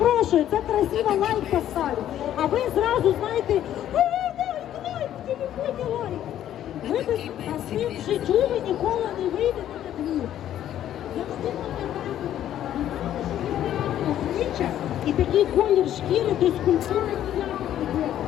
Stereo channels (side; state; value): right; quieter; 11.4 dB